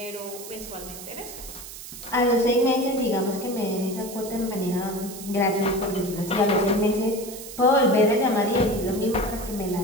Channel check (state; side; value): noise; right; hiss, 13 dB below the sound